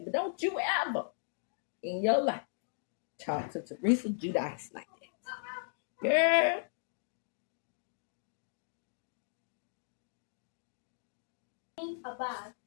But don't you ever in your life talk to Teresa Giudice like that. Girl.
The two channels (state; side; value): silent; right; digital silence